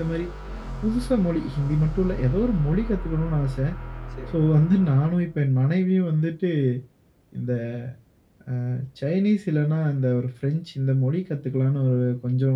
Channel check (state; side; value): identical; both; correlation 1.00